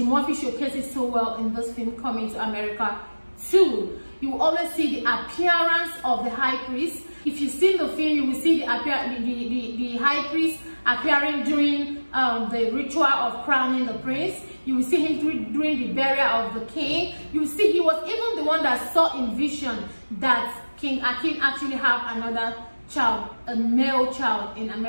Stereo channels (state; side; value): inverted; both; correlation -1.00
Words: Murphy showcases so well in this film Coming to America 2. You will always see the appearance of the high priest. If you've seen the film, you will see the high priest appearing during the ritual of crowning the prince. You will see him during the burial of the king. You will see he was even the one that saw in vision that King Akin actually have another child, a male child in